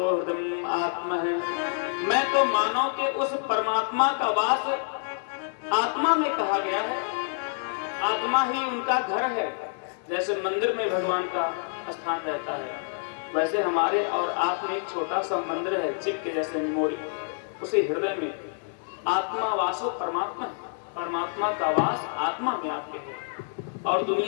हृदय आत्मा है। मैं तो मानव के उस परमात्मा का वास आत्मा में कहा गया है। आत्मा ही उनका घर है। जैसे मंदिर में भगवान का स्थान रहता है, वैसे हमारे और आप में एक छोटा सा मंदिर है, चिप के जैसे मेमोरी, उसी हृदय में आत्मा वासो परमात्मा है। परमात्मा का वास आत्मा में आपके है। और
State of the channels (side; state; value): right; silent; 58 dB below the other